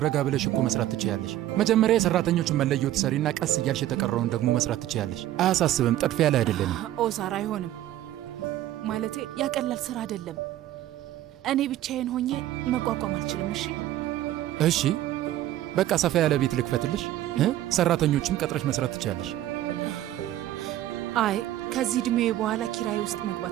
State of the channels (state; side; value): quieter; left; 13.4 dB